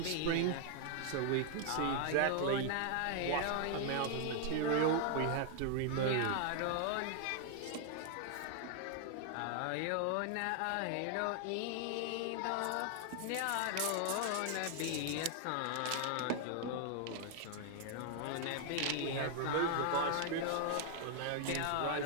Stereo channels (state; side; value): different; both; correlation 0.00